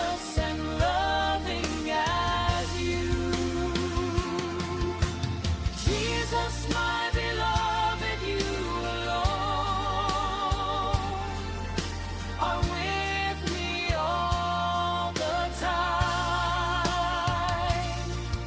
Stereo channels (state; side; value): identical; both; correlation 1.00